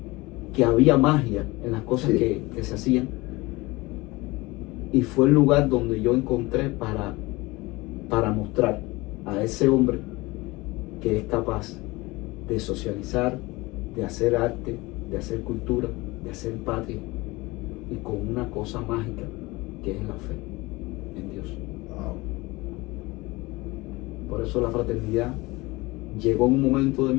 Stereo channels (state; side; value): quieter; right; 22.1 dB